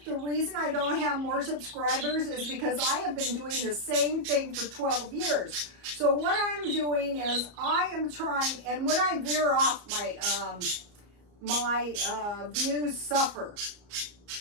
the reason I don't have more subscribers is because I have been doing the same thing for 12 years. So what I'm doing is I am trying, and when I veer off, my views suffer.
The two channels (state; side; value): late; left; 34 ms